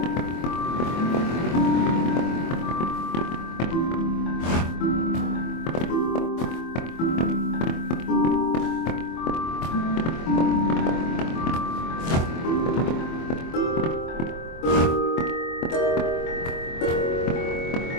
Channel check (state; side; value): late; right; 24 ms